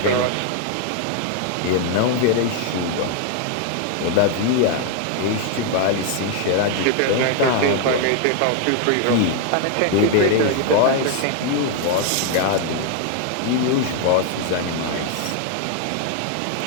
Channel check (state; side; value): different; both; correlation 0.00